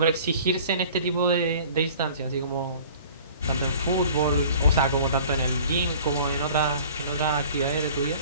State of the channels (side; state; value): both; inverted; correlation -0.47